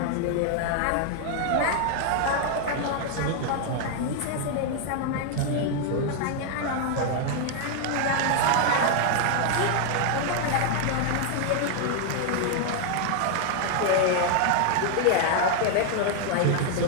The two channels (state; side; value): different; both; correlation 0.00